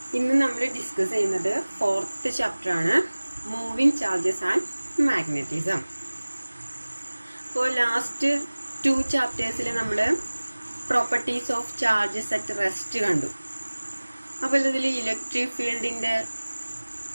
ഇന്ന് നമ്മൾ ഡിസ്കസ് ചെയ്യുന്നത് ഫോർത്ത് ചാപ്റ്റർ ആണ്, മൂവിങ് ചാർജസ് ആൻഡ് മാഗ്നറ്റിസം. അപ്പോൾ ലാസ്റ്റ് 2 ചാപ്റ്റേഴ്സിൽ നമ്മൾ properties of charges at rest കണ്ടു. അപ്പോൾ ഇതിൽ ഇലക്ട്രിക് ഫീൽഡിന്റെ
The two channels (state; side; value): inverted; both; correlation -1.00